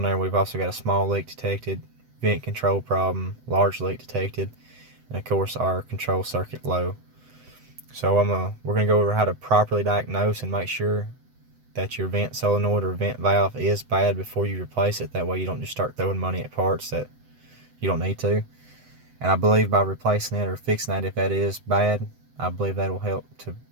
there, we've also got a small leak detected, vent control problem, large leak detected, and of course our control circuit low. So we're going to go over how to properly diagnose and make sure that your vent solenoid or vent valve is bad before you replace it. That way you don't just start throwing money at parts that you don't need to. And I believe by replacing it or fixing that, if that is bad, I believe that will help to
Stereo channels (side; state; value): left; late; 7.9 ms